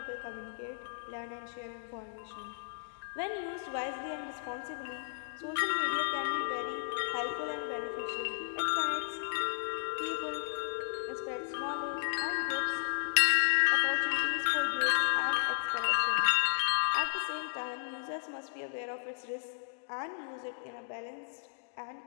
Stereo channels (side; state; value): right; silent; digital silence